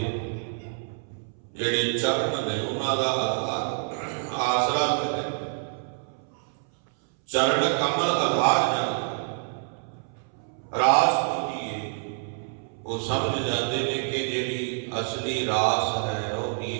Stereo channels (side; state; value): left; silent; 60 dB below the other